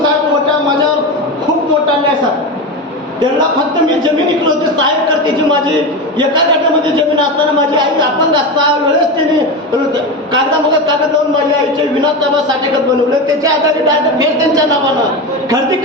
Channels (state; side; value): normal; both; correlation 0.20